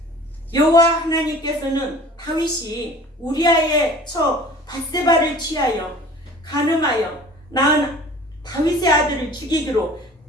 여호와 하나님께서는 다윗이 우리아의 처 밧세바를 취하여 간음하여 낳은 다윗의 아들을 죽이기로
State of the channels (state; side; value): normal; both; correlation 0.45